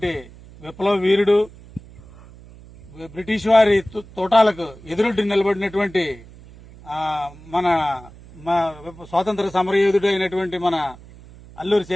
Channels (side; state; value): right; noise; hum, 20 dB below the sound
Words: విప్లవ వీరుడు బ్రిటిష్ వారి తోటాలకు ఎదురొడ్డి నిలబడినటువంటి మన స్వాతంత్ర సమరయోధుడు అయినటువంటి మన అల్లూరి